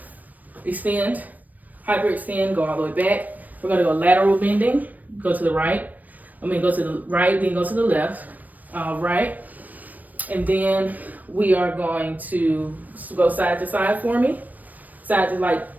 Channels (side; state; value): left; late; 0.082 ms